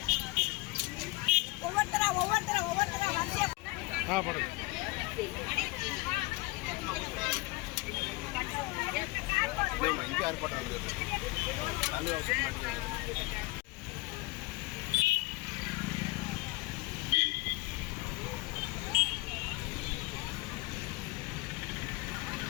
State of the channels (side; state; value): right; quieter; 23.3 dB